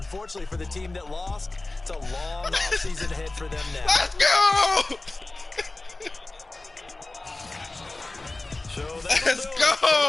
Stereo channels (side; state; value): right; quieter; 3.0 dB